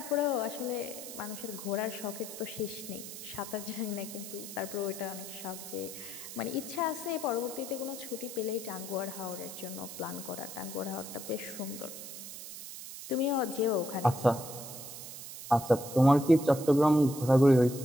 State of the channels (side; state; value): right; noise; hiss, 11 dB below the sound